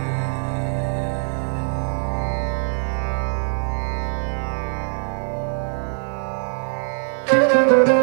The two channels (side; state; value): left; silent; 57 dB below the other